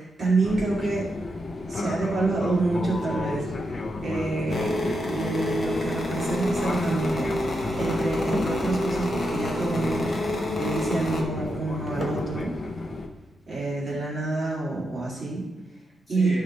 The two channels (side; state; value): both; normal; correlation 0.84